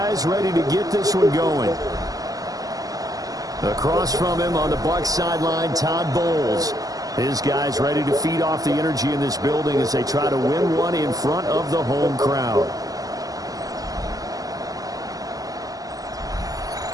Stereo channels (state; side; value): late; left; 0.17 ms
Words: ready to get this one going. Across from him on the Bucs sideline, Todd Bowles. His guys ready to feed off the energy in this building as they try to win one in front of the home crowd.